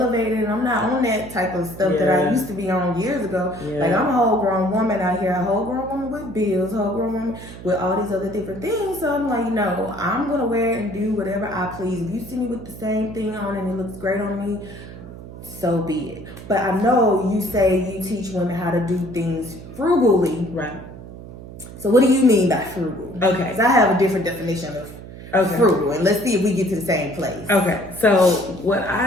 and I'm not on that type of stuff that I used to be on years ago. Like I'm a whole grown woman out here, a whole grown woman with bills, a whole grown woman with all these other different things. So I'm like, no, I'm gonna wear it and do whatever I please. If you see me with the same thing on and it looks great on me, so be it. But I know you say you teach women how to do things frugally. Right. So what do you mean by frugal? Okay. Because I have a different definition of frugal, and let's see if we get to the same place. Okay. So what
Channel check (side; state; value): right; noise; hum, 14 dB below the sound